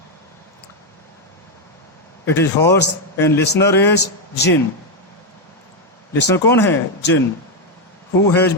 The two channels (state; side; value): normal; both; correlation 0.04